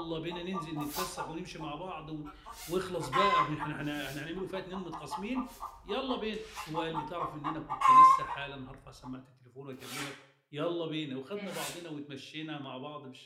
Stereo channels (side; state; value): both; identical; correlation 1.00